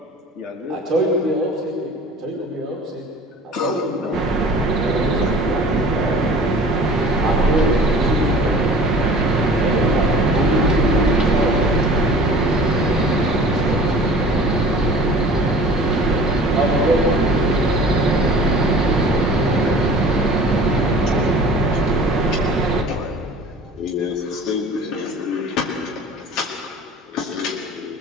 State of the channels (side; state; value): both; normal; correlation 0.44